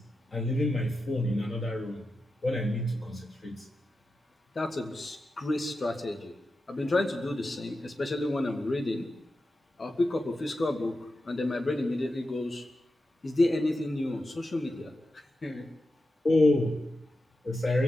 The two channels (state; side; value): normal; both; correlation 0.90